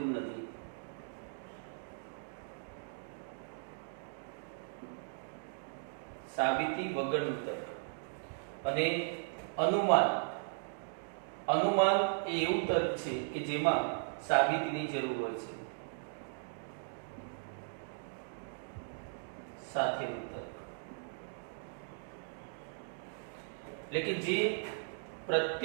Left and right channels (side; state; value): left; silent; digital silence